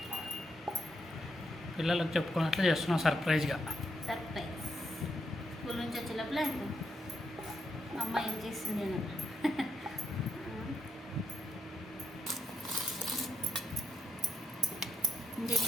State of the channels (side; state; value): both; normal; correlation 0.77